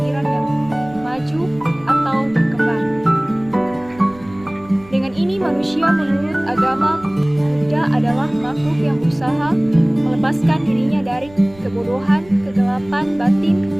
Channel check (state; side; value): noise; right; rumble, 22 dB below the sound